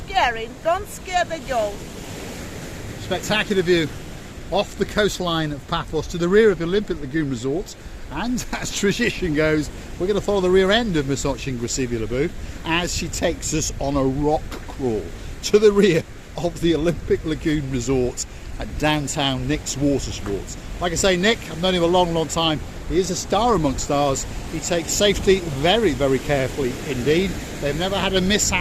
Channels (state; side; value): identical; both; correlation 1.00